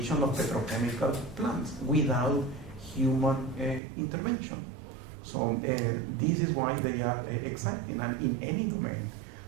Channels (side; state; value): left; drops out; at 3.8 s